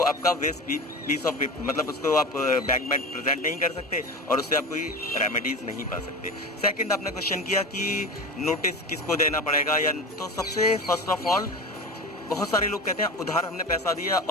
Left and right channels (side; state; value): both; normal; correlation 0.28